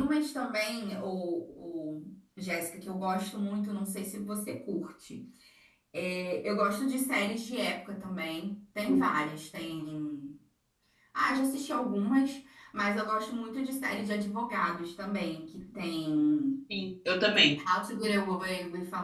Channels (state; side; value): identical; both; correlation 1.00